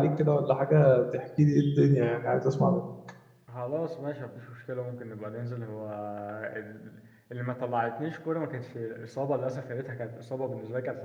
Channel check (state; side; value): identical; both; correlation 1.00